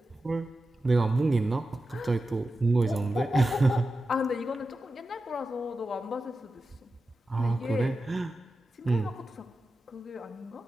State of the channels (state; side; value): normal; both; correlation 0.92